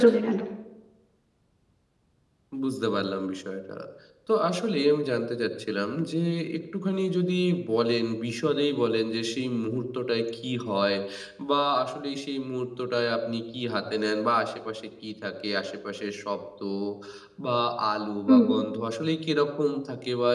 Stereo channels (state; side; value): identical; both; correlation 1.00